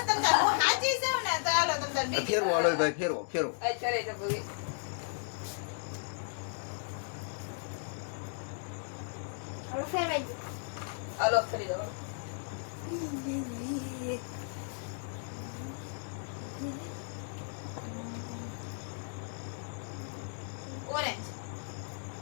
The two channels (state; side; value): silent; right; digital silence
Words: તમે તાર હું સાચી છું ને તો હાલો તમે તાર બીજી ફેરવો હાલો ભાઈ ફેરવો ફેરવો. આ ચરે છે ભૂમિ હવે ફેરવાઈ ગયું હાલો ફરી જાઓ ઓરેન્જ